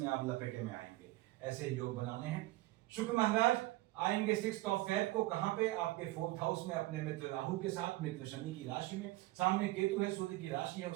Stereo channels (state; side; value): quieter; left; 18.5 dB